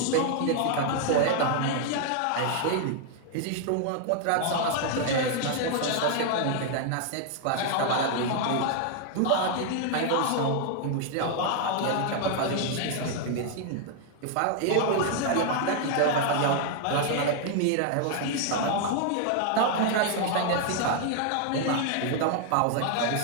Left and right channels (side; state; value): both; different; correlation 0.00